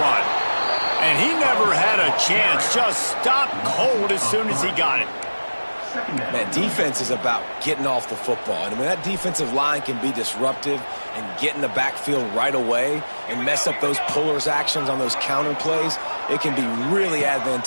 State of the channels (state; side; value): inverted; both; correlation -1.00